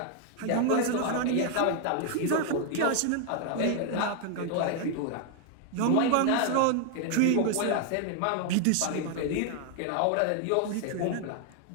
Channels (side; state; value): both; different; correlation 0.00